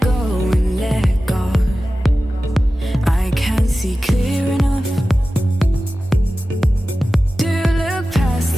go and let God. I can't see clear enough to look past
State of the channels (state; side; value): normal; both; correlation 0.95